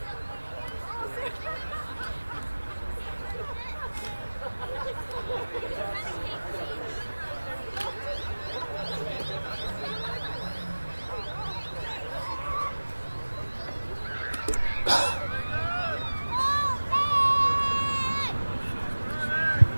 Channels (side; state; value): both; inverted; correlation -1.00